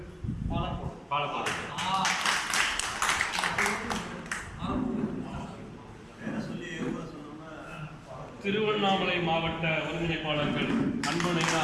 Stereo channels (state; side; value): identical; both; correlation 1.00